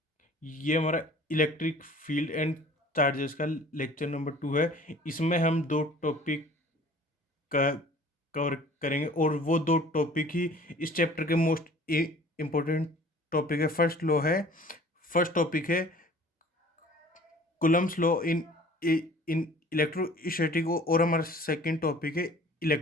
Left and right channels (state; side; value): normal; both; correlation 0.49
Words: ये हमारा इलेक्ट्रिक फील्ड एंड चार्जेस का लेक्चर नंबर 2 है। इसमें हम दो टॉपिक का कवर करेंगे और वो दो टॉपिक ही इस चैप्टर के मोस्ट इम्पोर्टेंट टॉपिक है। फर्स्ट टॉपिक है कुलम्स लॉ इन इलेक्ट्रोस्टैटिक और हमारा सेकंड टॉपिक है